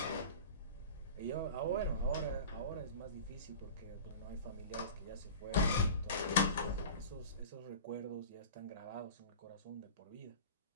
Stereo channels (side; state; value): both; inverted; correlation -0.37